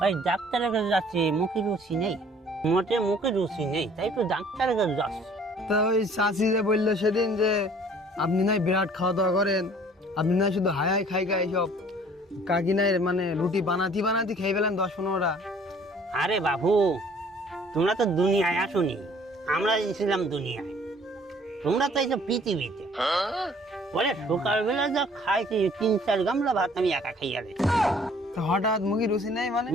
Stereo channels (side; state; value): both; normal; correlation 0.55